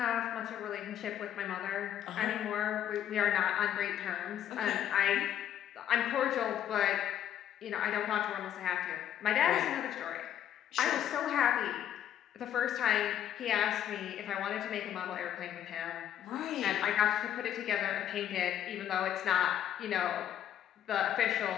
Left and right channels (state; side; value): quieter; right; 10.5 dB